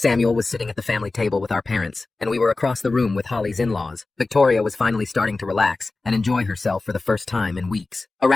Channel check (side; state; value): right; quieter; 3.5 dB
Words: was sitting at the family table with our parents, and we were across the room with Holly's in-laws. Victoria was finally starting to relax and enjoy herself for the first time in weeks.